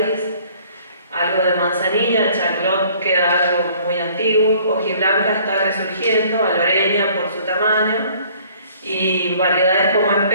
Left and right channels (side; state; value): both; inverted; correlation -0.56